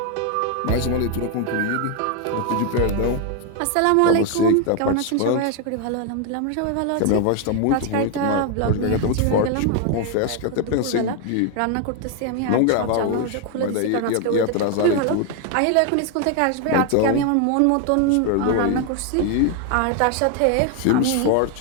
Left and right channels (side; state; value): both; different; correlation 0.01